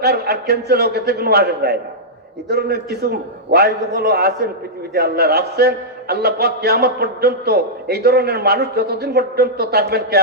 আর ক্যান্সেল হোক, এতে কোনো আসে যায় না। এই ধরনের কিছু ওয়াইজগুলো আছেন পৃথিবীতে, আল্লাহ রাখছেন। আল্লাহ পাক কিয়ামত পর্যন্ত এই ধরনের মানুষ যতদিন পর্যন্ত থাকবেন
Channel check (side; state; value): both; normal; correlation -0.10